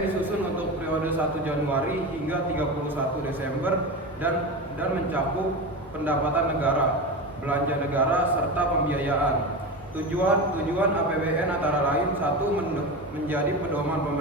disusun untuk periode 1 Januari hingga 31 Desember dan mencakup pendapatan negara, belanja negara, serta pembiayaan. Tujuan APBN antara lain: 1. Menjadi pedoman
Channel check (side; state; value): both; normal; correlation 0.23